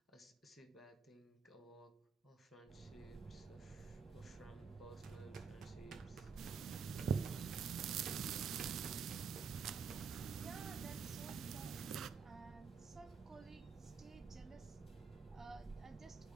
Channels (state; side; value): quieter; left; 5.8 dB